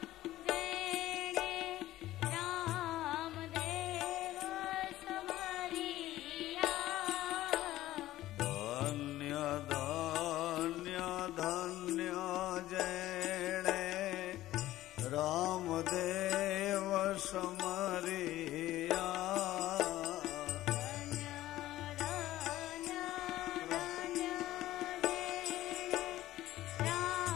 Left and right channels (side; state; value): right; quieter; 15.1 dB